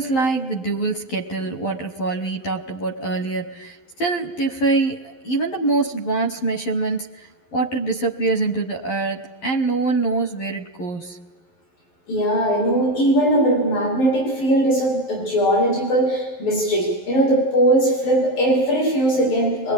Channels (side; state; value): right; late; 11 ms